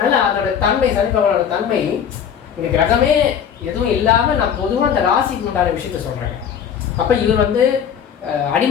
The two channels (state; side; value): quieter; right; 8.2 dB